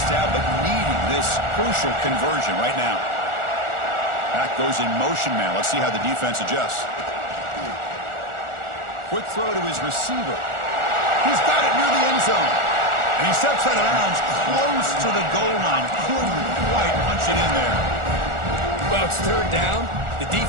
down, but needing this crucial conversion right now. Back goes in motion now. Let's see how the defense adjusts. Quick throw to his receiver. He's got it near the end zone. And he steps out of bounds close to the goal line. Couldn't quite punch it in there. Well, it's third down. The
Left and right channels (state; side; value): late; left; 1.4 ms